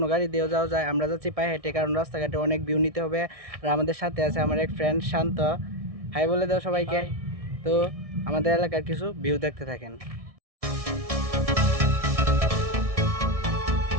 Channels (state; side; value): late; left; 1.6 ms